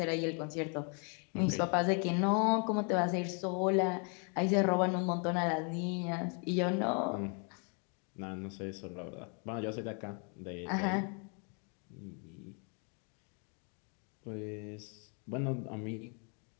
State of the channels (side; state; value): right; quieter; 38.2 dB